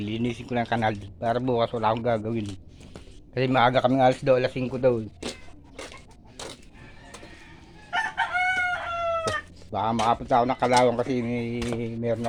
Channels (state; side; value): identical; both; correlation 1.00